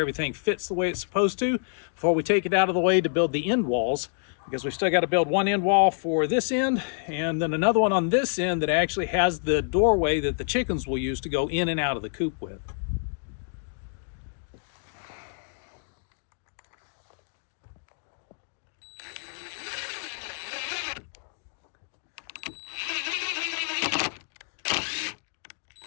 fits the way it's supposed to before we take it out of the way to build the end walls, because we've still got to build one end wall for this end and then another one on this end that actually has the doorway that the chickens will use to go in and out of the coop with.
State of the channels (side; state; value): right; silent; digital silence